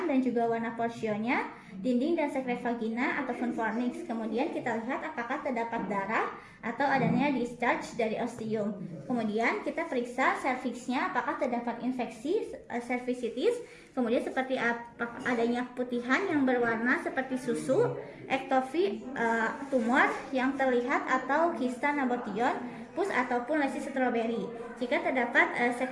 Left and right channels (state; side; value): identical; both; correlation 1.00